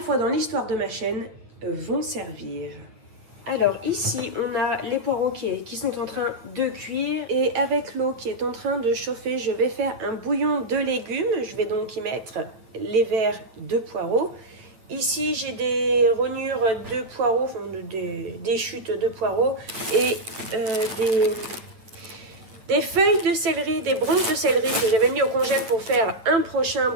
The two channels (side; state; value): left; late; 9.3 ms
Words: fois dans l'histoire de ma chaîne, vont servir. Alors ici, on a les poireaux qui sont en train de cuire. Et avec l'eau qui est en train de chauffer, je vais faire un bouillon de légumes. Je vais donc y mettre les verres de poireaux. Ici, j'ai des rognures de poireaux, enfin des chutes de poireaux. Et des feuilles de céleri, des branches de céleri que j'avais mis au congèle pour faire un prochain